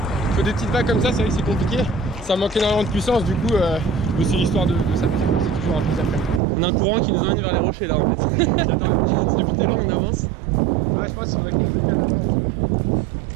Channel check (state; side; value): drops out; left; at 6.4 s